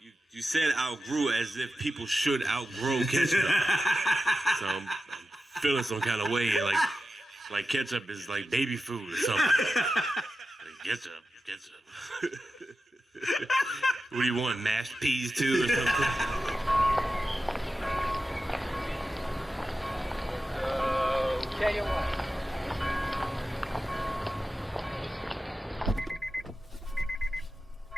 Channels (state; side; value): normal; both; correlation 0.92